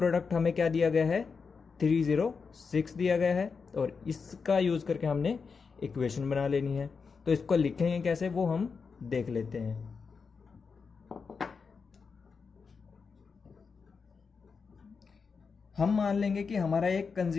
हमें क्या दिया गया है, 306 दिया गया है, और इसका यूज करके हमने इक्वेशन बना लेनी है। तो इसको लिखेंगे कैसे वो हम देख लेते हैं। हम मान लेंगे कि हमारा एक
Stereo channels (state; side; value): quieter; right; 5.3 dB